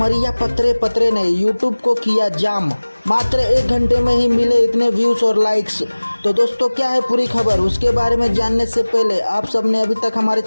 पतरे पतरे ने यूट्यूब को किया जाम। मात्र 1 घंटे में ही मिले इतने व्यूज और लाइक्स। तो दोस्तों क्या है पूरी खबर, उसके बारे में जानने से पहले आप सबने अभी तक हमारे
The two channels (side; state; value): both; inverted; correlation -1.00